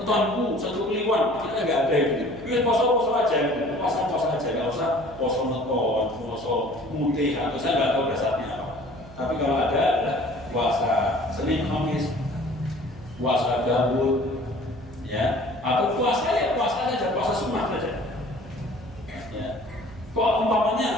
satu kliwon, kita nggak ada gitu. Ini puasa aja, puasa aja, nggak usah puasa menton, puasa mutih atau saya nggak tahu dasarnya apa. Tapi kalau ada adalah puasa Senin Khamis, puasa Daud, ya, atau puasa saja, puasa sunnah saja. Ya. Kok umpamanya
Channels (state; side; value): noise; right; hum, 19 dB below the sound